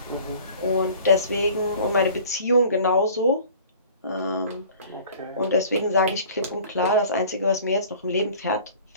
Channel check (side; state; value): both; inverted; correlation -0.47